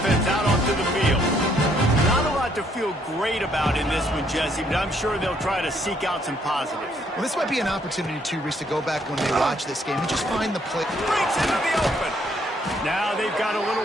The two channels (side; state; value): both; normal; correlation 0.68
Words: out onto the field. Not a lot to feel great about in this one, Jesse, but I'm sure they'll try to seek out some positives. Well, this might be an opportunity, too, Reese, to go back when they watch this game and just find the play. Breaks into the open. Now they've got a